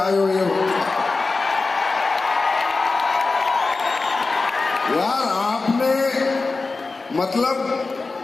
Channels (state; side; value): quieter; right; 3.8 dB